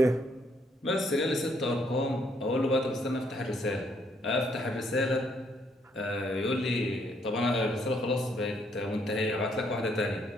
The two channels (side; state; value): both; normal; correlation 0.70